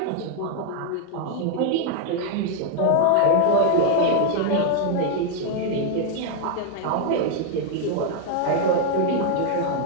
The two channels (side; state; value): both; different; correlation 0.00